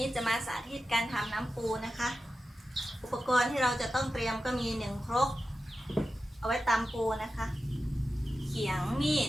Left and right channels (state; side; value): normal; both; correlation 0.92